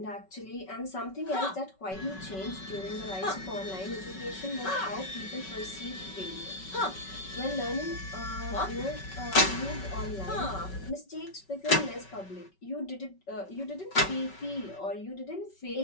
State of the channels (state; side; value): late; right; 5.3 ms